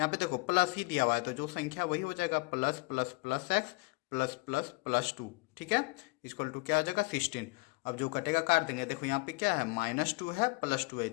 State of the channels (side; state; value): right; quieter; 26.1 dB